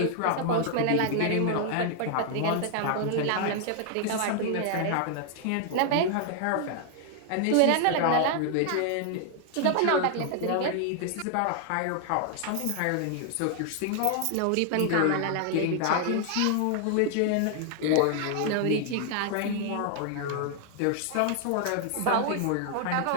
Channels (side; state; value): both; different; correlation 0.00